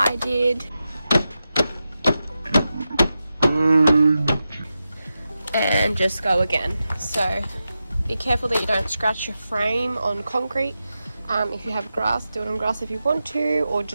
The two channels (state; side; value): inverted; both; correlation -0.91